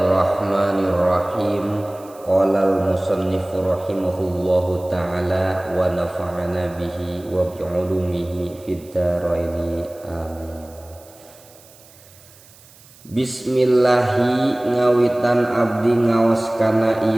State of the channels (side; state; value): right; noise; hiss, 25 dB below the sound